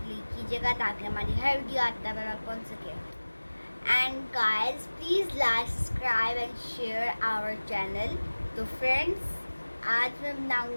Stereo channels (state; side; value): inverted; both; correlation -1.00